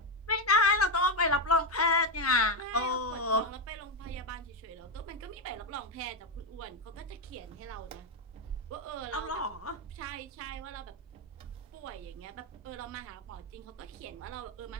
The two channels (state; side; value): normal; both; correlation 0.06